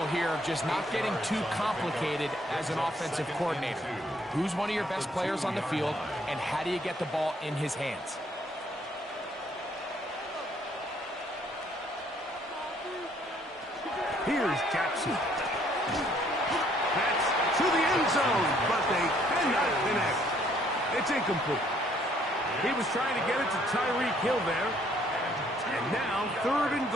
here of just not getting too complicated as an offensive coordinator. Who's one of your best players on the field, and how do you get the ball in his hands? Here's Jackson. That's to the end zone, but they cannot connect. It's incomplete. He was trying to get it to Tyreek Hill there. And now, 3rd and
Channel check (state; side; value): normal; both; correlation 0.65